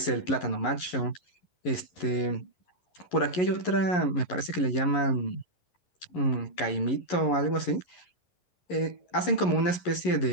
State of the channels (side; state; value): right; late; 11 ms